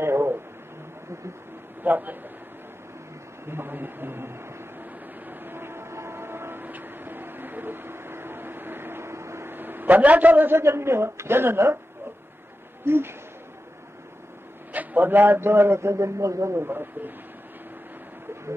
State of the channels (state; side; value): normal; both; correlation 0.92